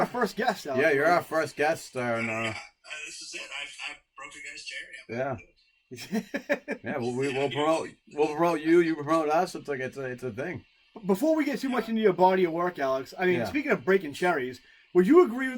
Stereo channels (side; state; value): both; identical; correlation 1.00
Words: our first guest, Alex. Yeah, you're our first guest. This is it. I broke your guys' chair. Yeah. Yeah, we'll promote you. You promote us. It's like it's a thing. Before we get too much into your body of work, Alex, I mean, Speaking of breaking cherries, would you agree